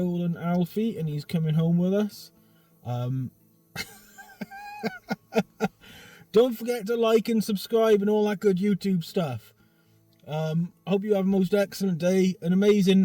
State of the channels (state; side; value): identical; both; correlation 1.00